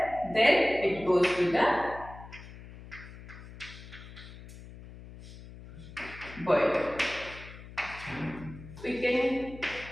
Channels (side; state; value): left; noise; hum, 16 dB below the sound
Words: then it goes to the boiler. We can